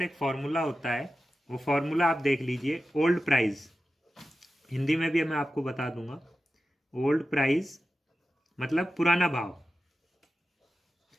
एक फॉर्मूला होता है, वो फॉर्मूला आप देख लीजिए। ओल्ड प्राइस, हिंदी में भी मैं आपको बता दूंगा। ओल्ड प्राइस मतलब पुराना भाव,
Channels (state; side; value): normal; both; correlation 0.92